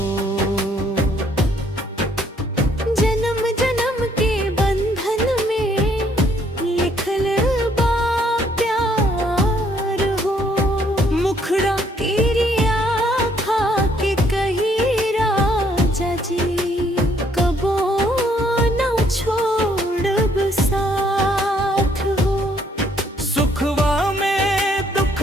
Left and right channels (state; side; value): normal; both; correlation 0.66